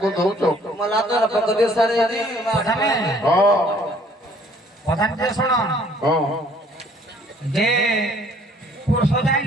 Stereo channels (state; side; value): normal; both; correlation 0.59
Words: ଦଉଛ ପ୍ରଧାନ ଶୁଣ যে পুরুষ যাই